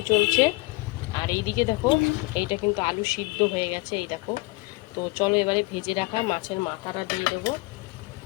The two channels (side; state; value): right; quieter; 23.8 dB